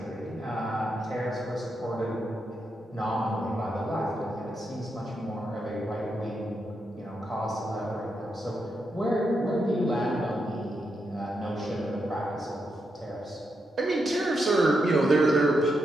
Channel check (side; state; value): both; normal; correlation 0.83